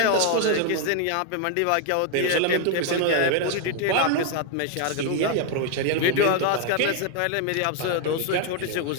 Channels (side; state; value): both; different; correlation 0.00